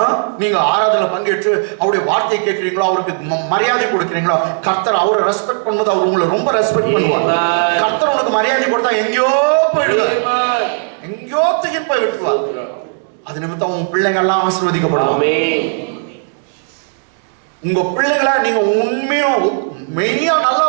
நீங்க ஆராதனை பங்கேற்று அவருடைய வார்த்தையை கேட்கிறீங்களோ, அவருக்கு மரியாதை கொடுக்கிறீங்களோ, கர்த்தர் அவரை ரெஸ்பெக்ட் பண்ணும்போது அவர் உங்களை ரொம்ப ரெஸ்பெக்ட் பண்ணுவார். கர்த்தர் உனக்கு மரியாதை கொடுத்தா எங்கேயோ போயிடுவார், எங்கேயோ தூக்கிட்டு போய் விட்டுருவார். அது நிமித்தம் உங்க பிள்ளைங்க எல்லாம் ஆசீர்வதிக்கப்படுவாங்க. உங்க பிள்ளைகளை நீங்க உண்மையும் மெய்யா நல்லா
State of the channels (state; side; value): silent; left; 66 dB below the other